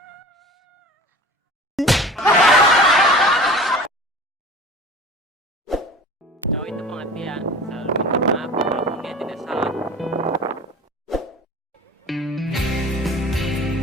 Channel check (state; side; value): normal; both; correlation 0.39